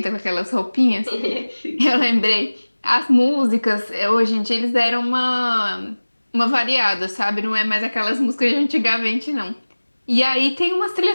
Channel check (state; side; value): inverted; both; correlation -1.00